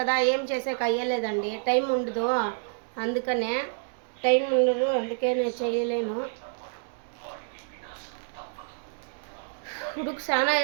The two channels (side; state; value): left; silent; digital silence